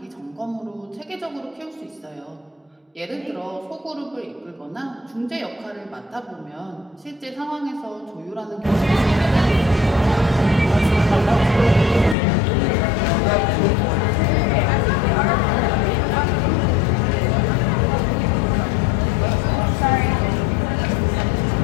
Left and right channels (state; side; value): drops out; right; at 12.2 s